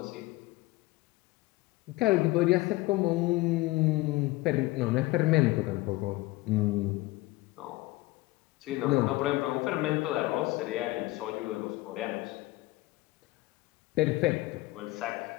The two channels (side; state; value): right; quieter; 19.9 dB